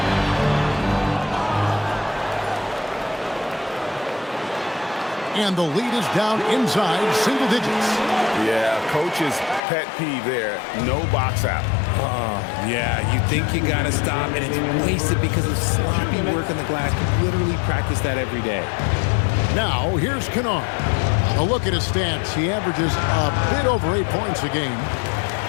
And the lead is down inside single digits. Yeah, coach's pet peeve there. No box out. Yeah, you think you got to stop, and it's wasted because of sloppy work on the glass. You literally practice that every day. Now, here's Kennard. A look at his stats. He averages a bit over 8 points a game.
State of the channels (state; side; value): drops out; right; at 9.6 s